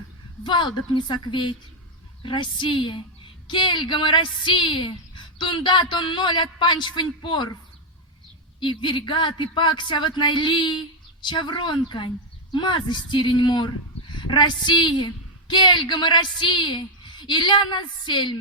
валдап не сокветь. Россия, кельгамы Россия, тунда тон ноль от панчфань порв, и вергат и пакся вот найли, чавронкань, мазы стирень мор. Россия, кельгамы Россия, и ля нас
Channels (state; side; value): normal; both; correlation 0.01